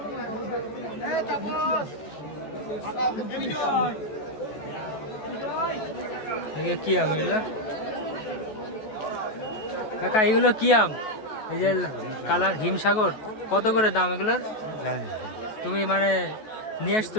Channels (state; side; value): late; right; 14 ms